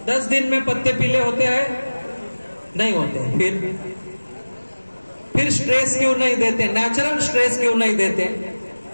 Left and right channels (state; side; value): inverted; both; correlation -1.00